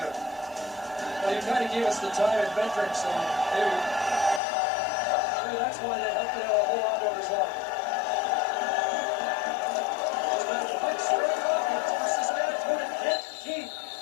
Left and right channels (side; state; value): right; drops out; at 4.4 s